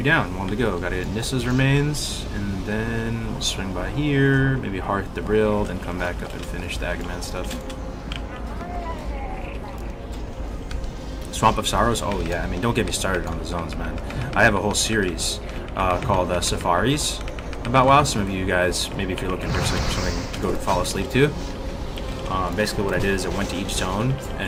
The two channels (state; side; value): identical; both; correlation 1.00